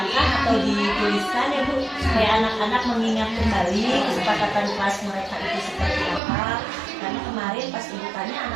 atau dituliskan ya Bu, supaya anak-anak mengingat kembali kesepakatan kelas mereka itu seperti apa. Karena kemarin pas Ibu tanya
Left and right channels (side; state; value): left; drops out; at 6.2 s